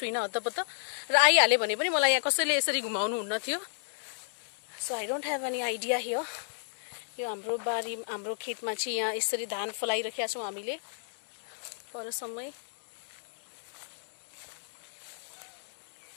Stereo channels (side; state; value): right; silent; digital silence